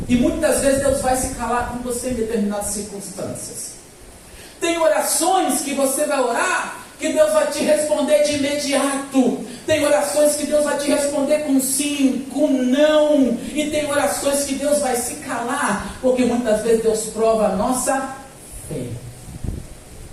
e muitas vezes Deus vai se calar com você em determinadas circunstâncias. Tem orações que você vai orar que Deus vai te responder de imediato. Tem orações que Deus vai te responder com sim, com não. E tem orações que Deus vai se calar, porque muitas vezes Deus prova a nossa fé.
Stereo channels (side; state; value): both; identical; correlation 1.00